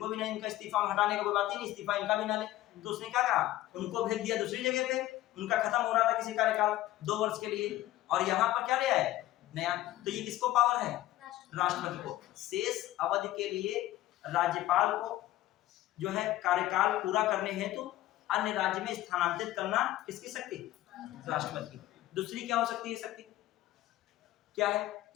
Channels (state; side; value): quieter; right; 15.2 dB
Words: भी नहीं, इनका इस्तीफा हटाने का कोई बात ही नहीं, इस्तीफा इनका भी ना ले। तो उसने क्या कहा, उनको भेज दिया दूसरी जगह पे, उनका खत्म हो रहा था किसी कार्यकाल 2 वर्ष के लिए, और यहाँ पर क्या ले आए नया। तो ये किसको पावर है, राष्ट्रपति को। शेष अवधि के लिए राज्यपाल को जो है कार्यकाल पूरा करने हेतु अन्य राज्य में स्थानांतरित करना किसकी शक्ति, राष्ट्रपति की। दूसरी क्या हो सकती है शक्ति, क्या है,